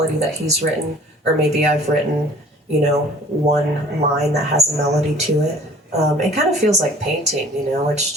that he's written, or maybe I've written, one line that has a melody to it. It kind of feels like painting, it's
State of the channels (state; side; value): normal; both; correlation 0.50